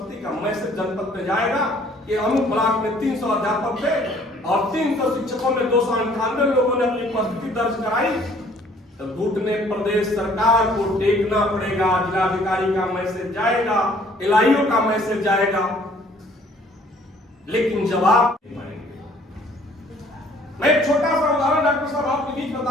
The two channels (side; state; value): both; normal; correlation 0.58